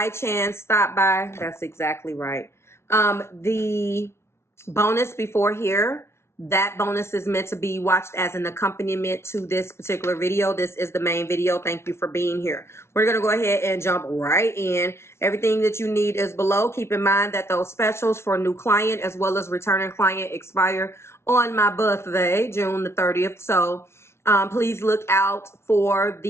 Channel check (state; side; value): late; right; 0.13 ms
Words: chance stop by, that's exactly right. The bonus before here, that bonus is meant to be watched as an accompaniment to this particular video. This is the main video. Thank you for being here. We're going to go ahead and jump right in. Everything that you need is below. Keep in mind that those specials for new client as well as returning client expire on my birthday, June the 30th. So please look out for